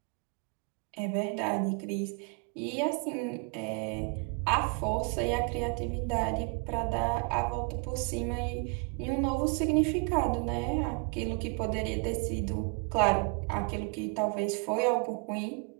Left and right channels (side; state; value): left; quieter; 35.4 dB